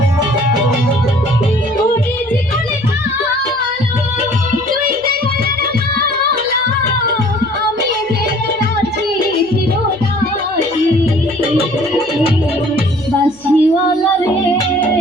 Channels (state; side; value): noise; left; hum, 30 dB below the sound